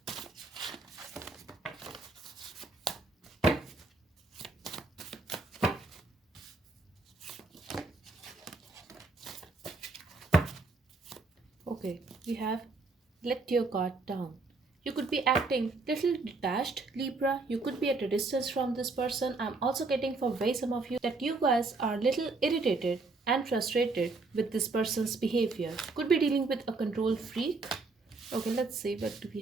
Okay, we have let your guard down. You could be acting little detached, Libra. You could be at a distance from this person. I'm also getting for way some of you that you guys are little irritated and frustrated with this person's behavior. Could be dealing with a control freak. Okay, let's see what do we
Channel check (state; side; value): quieter; left; 3.7 dB